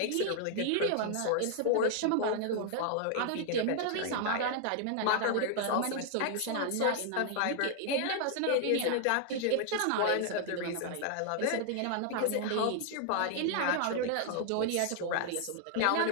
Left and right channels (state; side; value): different; both; correlation 0.00